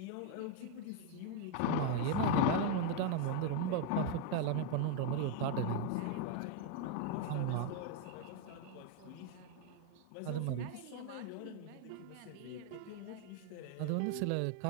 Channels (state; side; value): different; both; correlation 0.01